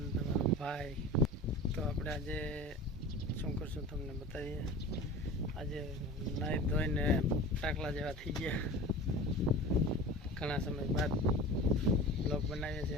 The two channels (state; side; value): normal; both; correlation 0.36